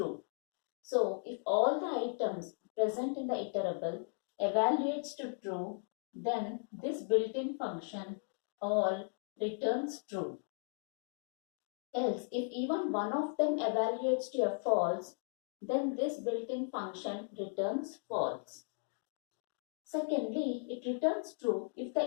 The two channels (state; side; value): silent; right; 53 dB below the other